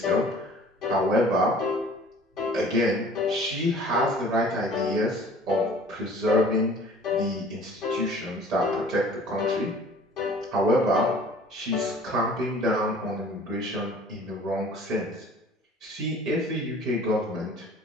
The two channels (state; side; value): normal; both; correlation 0.49